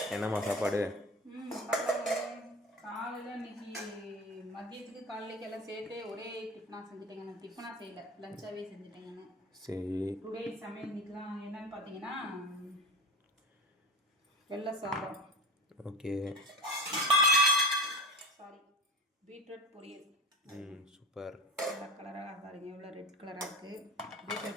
என்னம்மா சாப்பாடு? காலையில் இன்னைக்கு மதியத்துக்கு காலையிலேக்கு எல்லாம் சேர்த்து ஒரே டிஃபனாக செஞ்சுட்டேங்க. நான் டிஃபனாக செய்யலை, லஞ்சாகவே செஞ்சுட்டேங்கன்னு. சரி, டுடே சமையல் இன்னைக்குலாம் என்னன்னு பார்த்தீங்கன்னா வெள்ளை சாதம், ஓகே, சாரி பீட்ரூட் பொரியல். சூப்பர். வெள்ளை கலராக பாருங்க, எவ்வளோ ரெட் கலராக இருக்குது.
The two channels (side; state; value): both; normal; correlation 0.31